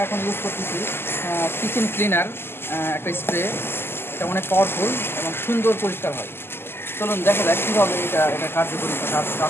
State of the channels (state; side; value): late; right; 0.11 ms